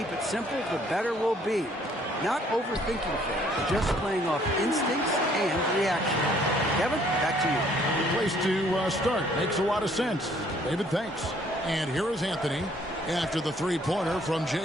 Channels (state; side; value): normal; both; correlation 0.62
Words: it simple, the better we'll be. Not overthinking things, just playing off instincts and reaction. Kevin, back to you. Good place to start. Makes a lot of sense. David, thanks. And here is Anthony after the three-pointer from